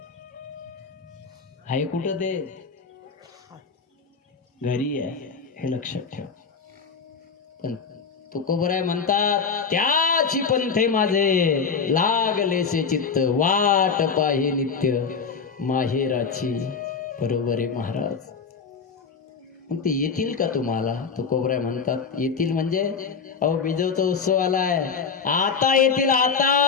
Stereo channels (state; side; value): quieter; right; 5.7 dB